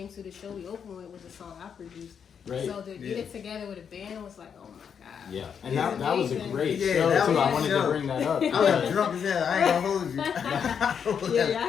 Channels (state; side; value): quieter; right; 7.3 dB